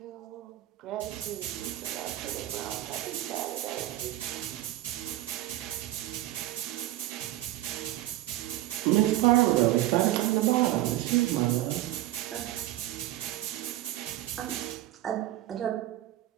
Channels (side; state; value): left; quieter; 15.1 dB